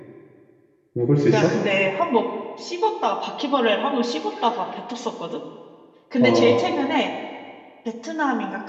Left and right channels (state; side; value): identical; both; correlation 1.00